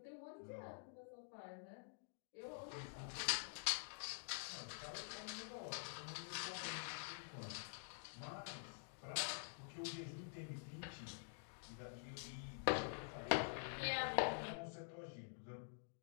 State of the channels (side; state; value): right; silent; digital silence